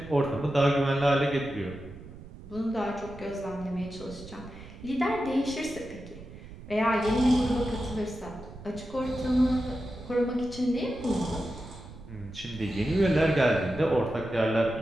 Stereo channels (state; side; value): noise; right; rumble, 16 dB below the sound